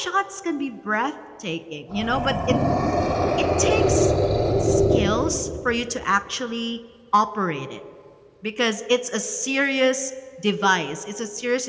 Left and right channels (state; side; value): identical; both; correlation 1.00